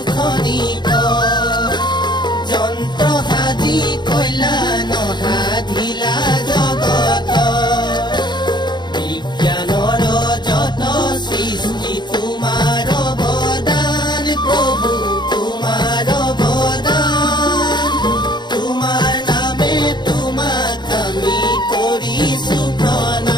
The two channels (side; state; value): right; late; 0.21 ms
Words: খনিক যন্ত্ৰ সাজি কইলা নসাধিলা জগত। বিজ্ঞানৰ যত সৃষ্টি তোমাৰ অৱদান, প্ৰভু তোমাৰ অৱদান। তোমাৰ নামে তোমাক আমি কৰিছো